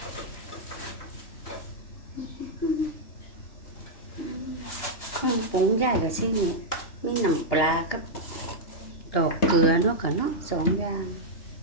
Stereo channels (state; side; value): late; right; 2.9 ms